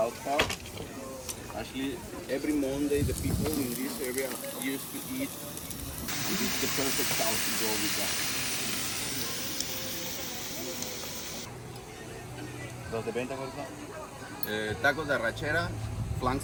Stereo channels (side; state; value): both; identical; correlation 1.00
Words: Park. Actually, every Monday, the people in this area used to eat. This is the perfect sauce to go with that. ¿Los de venta cuáles son? Tacos de arrachera, flank